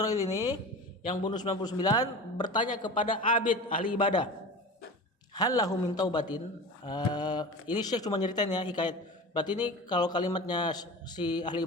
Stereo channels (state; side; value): normal; both; correlation 0.32